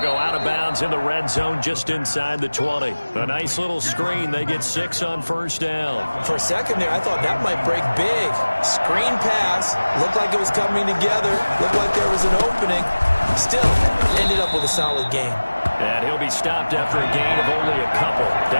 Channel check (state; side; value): inverted; both; correlation -1.00